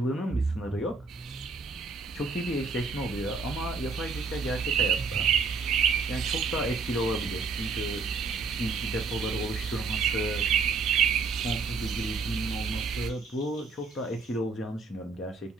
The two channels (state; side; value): quieter; left; 4.5 dB